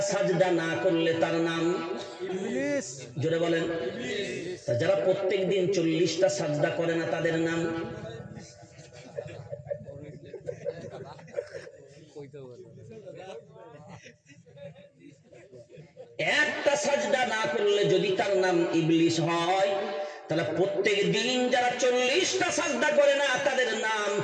সাজদা না করলে তার নাম ইবলিস। জোরে বলেন। যারা প্রত্যেক দিন 40টা সাজদা করে না তাদের নাম? একটা সাজদা না করলে যদি তার নাম ইবলিস হয়, তাহলে প্রত্যেক দিন যারা 40টা সাজদা করে না তাদের নাম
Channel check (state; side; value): identical; both; correlation 1.00